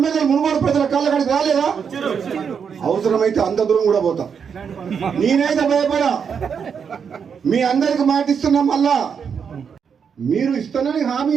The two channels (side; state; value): left; quieter; 6.8 dB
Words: మునుగోడు ప్రజల కాళ్ళ కాడికి రాలేదా? అవసరమైతే అంత దూరం కూడా పోతా. నేనైతే భయపడా. మీ అందరికి మాటిస్తున్నా. మళ్ళా మీరు ఇస్తానని హామీ